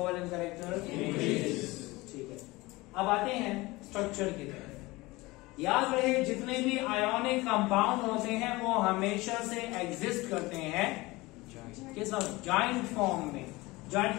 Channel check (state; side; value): quieter; right; 21.5 dB